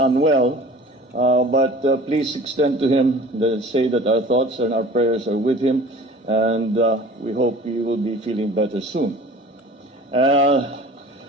but please extend to him, say that our thoughts and our prayers are with him, and we hope he will be feeling better soon.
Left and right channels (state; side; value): normal; both; correlation 0.44